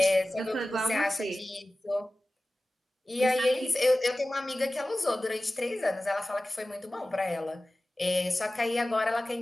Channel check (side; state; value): both; normal; correlation 0.96